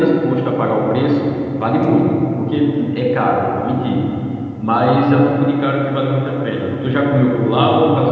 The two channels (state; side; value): identical; both; correlation 1.00